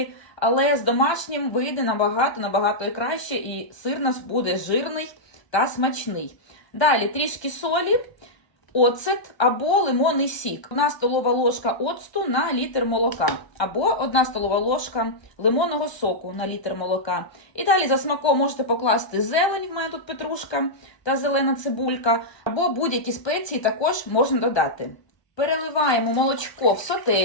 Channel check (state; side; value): late; right; 1.2 ms